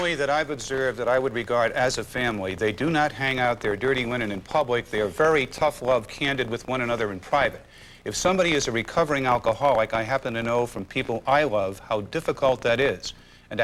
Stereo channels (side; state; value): both; identical; correlation 1.00